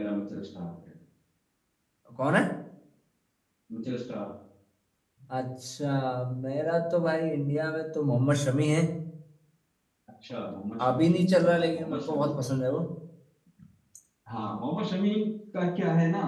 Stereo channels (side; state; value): both; identical; correlation 1.00